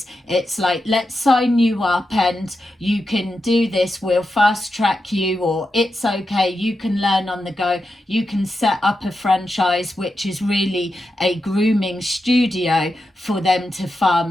it's like, let's sign you up and you can do this, we'll fast track you, or it's okay, you can learn on the go, you can set up a franchise, which is really a grooming studio for them to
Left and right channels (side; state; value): both; normal; correlation 0.88